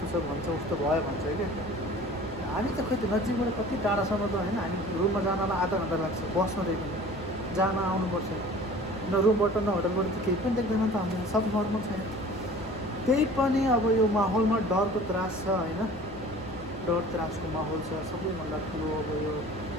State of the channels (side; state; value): both; normal; correlation 0.45